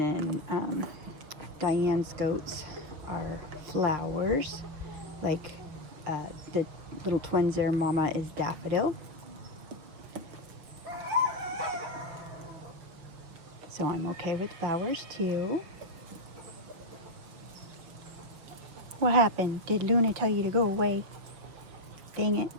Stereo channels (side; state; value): left; late; 6.2 ms